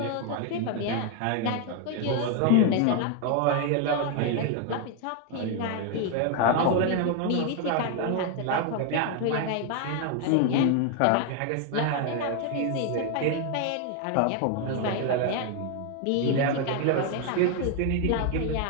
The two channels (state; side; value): different; both; correlation 0.00